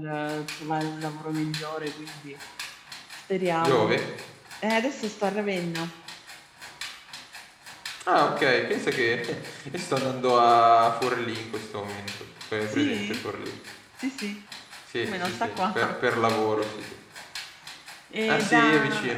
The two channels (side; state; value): both; identical; correlation 1.00